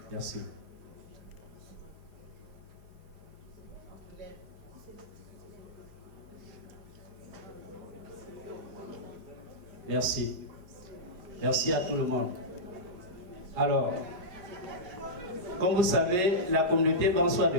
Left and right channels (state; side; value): late; left; 4.6 ms